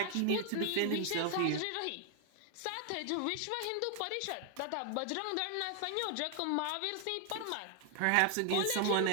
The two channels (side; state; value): both; different; correlation 0.00